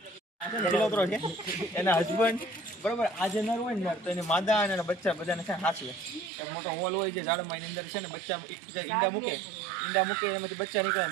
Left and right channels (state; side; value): drops out; left; at 6.3 s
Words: એના હસબન્ડ બરોબર આજે નર હોય ને તો એને માદા અને બચ્ચા બધાને છે હાંસવે. એક મોટો હોલ હોય છે ઝાડમાં, એની અંદર છે ને બચ્ચા ઈંડા મૂકે એનામાંથી બચ્ચા નીકળે.